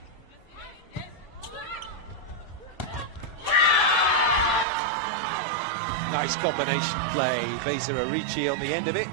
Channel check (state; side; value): drops out; left; at 4.7 s